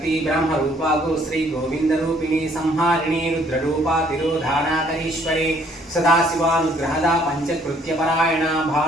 ब्रह्मरूपा गो श्री गोविंदरूपिणी संहारिणी रुद्ररूपा तिरोधानाकरीश्वरी सदाशिवानुग्रहदा पंचकृत्यपरायणा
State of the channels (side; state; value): both; normal; correlation 0.63